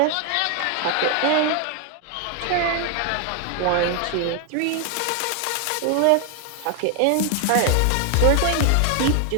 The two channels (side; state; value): both; different; correlation 0.01